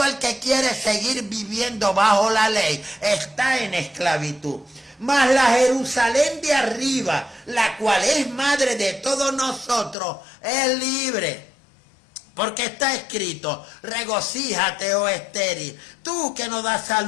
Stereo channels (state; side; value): drops out; right; at 10.0 s